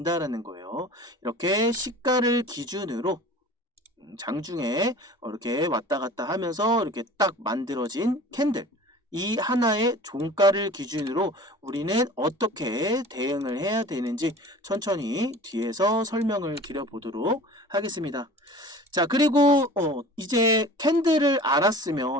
거예요. 이렇게 시가를 기준으로 장중에 이렇게 왔다 갔다 하면서 이렇게 딱 만들어진 캔들, 이 하나의 종가를 기준으로 우리는 어떻게 대응을 해야 되는지 천천히 뒤에서 설명을 드려보도록 하겠습니다. 자, 그리고 이제 캔들을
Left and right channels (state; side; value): normal; both; correlation 0.42